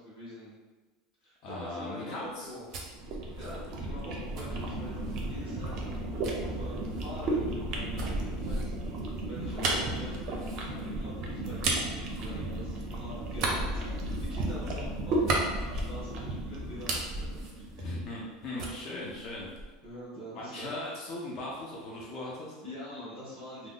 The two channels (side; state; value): both; normal; correlation 0.40